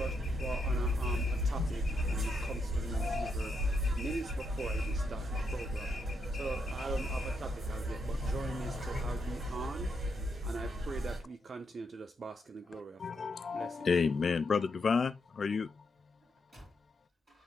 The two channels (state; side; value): normal; both; correlation 0.80